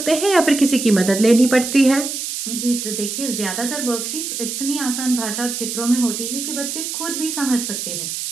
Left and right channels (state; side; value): noise; right; hiss, 5 dB below the sound